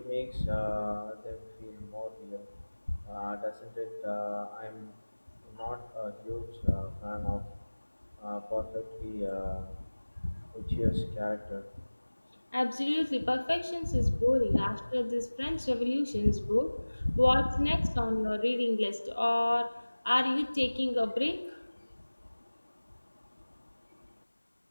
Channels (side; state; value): both; inverted; correlation -1.00